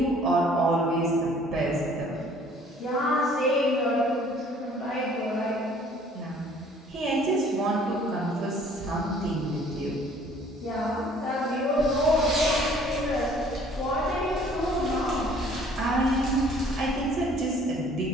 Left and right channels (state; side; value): normal; both; correlation 0.56